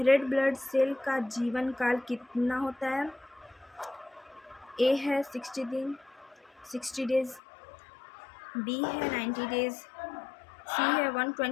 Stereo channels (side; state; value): right; drops out; at 7.4 s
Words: ब्लड सेल का जीवन काल कितना होता है। ए है 60 डेज, बी है 90 डेज, सी है